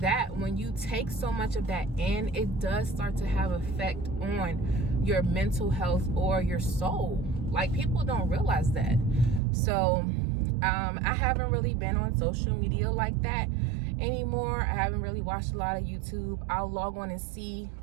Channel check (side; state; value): left; drops out; at 9.4 s